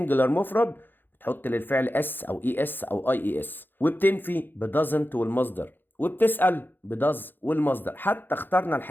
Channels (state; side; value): late; right; 0.095 ms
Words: مفرد بتحط للفعل اس او اي اس او اي اس، وبتنفي بدازنت والمصدر، وبتسأل بداز والمصدر. حتى اخترنا